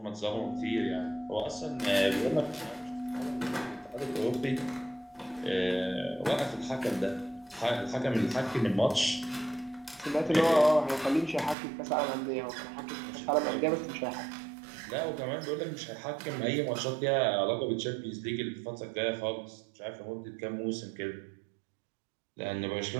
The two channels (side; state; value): left; drops out; at 11.6 s